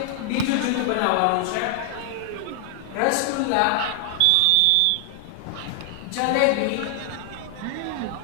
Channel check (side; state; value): both; different; correlation 0.00